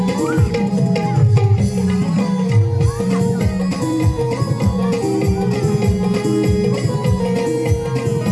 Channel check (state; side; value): identical; both; correlation 1.00